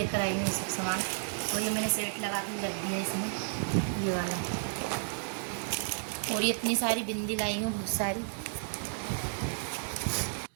आई हूँ ये सब सामान। और ये मैंने सेट लगा के रख दिया इसमें, ये वाला। और ये इतनी सारी बिंदी लाई हूँ, बहुत सारी।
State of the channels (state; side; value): silent; left; digital silence